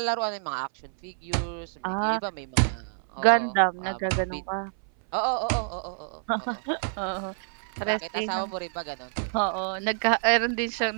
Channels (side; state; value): left; silent; 60 dB below the other